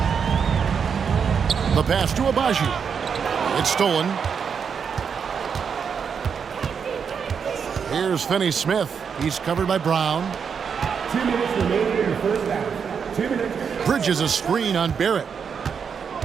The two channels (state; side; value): quieter; left; 6.6 dB